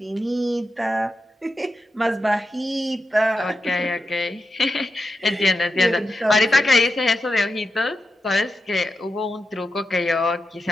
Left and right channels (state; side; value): normal; both; correlation 0.89